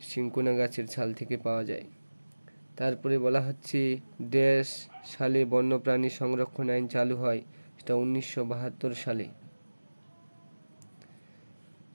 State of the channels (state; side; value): inverted; both; correlation -1.00